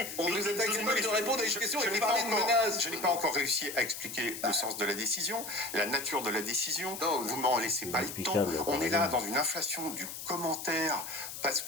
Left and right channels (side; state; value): left; noise; hiss, 9 dB below the sound